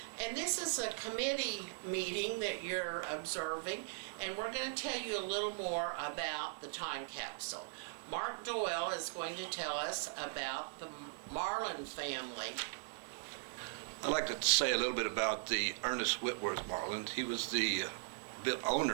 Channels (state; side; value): silent; left; digital silence